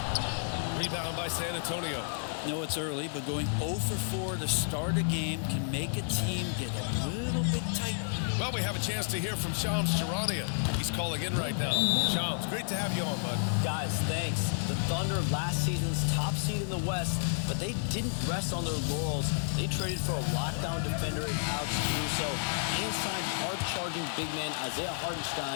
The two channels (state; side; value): silent; right; digital silence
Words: Rebound by San Antonio. No, it's early, but going 0 for 4 to start a game can make a team get a little bit tight. Well, we have a chance to hear from Shams Charania. He's calling in right now. Shams, great to have you on, bud. Guys, thanks. The Thunder, last season's top seed in the West, but they didn't rest on their laurels. They traded for a lockdown defender in Alex Caruso and signed hard-charging big man Isaiah